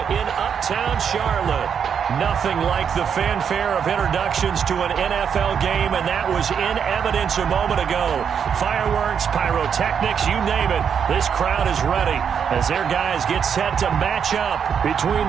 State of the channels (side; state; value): left; quieter; 7.4 dB